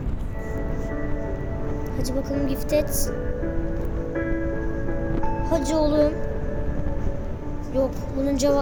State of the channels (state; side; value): identical; both; correlation 1.00